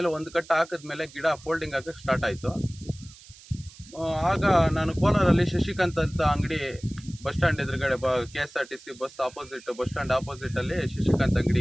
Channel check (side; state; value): right; noise; hiss, 21 dB below the sound